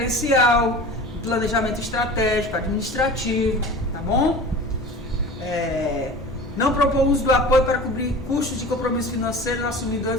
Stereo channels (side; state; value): both; normal; correlation 0.37